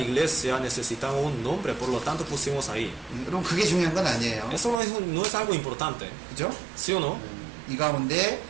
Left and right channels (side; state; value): left; drops out; at 4.8 s